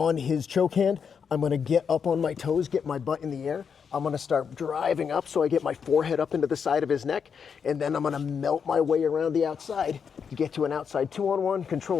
his choke hand. I'm going to get up on my toes, get my butt in the air. I'm going to start driving up so I get my forehead up into the side of his neck, and then I'm going to melt my way around the outside to get to an outside 2-on-1,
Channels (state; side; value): quieter; right; 6.6 dB